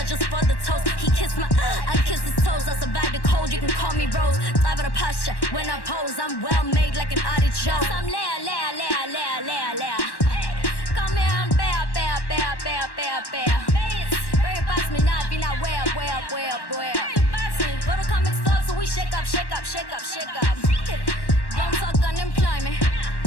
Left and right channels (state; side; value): late; right; 1.1 ms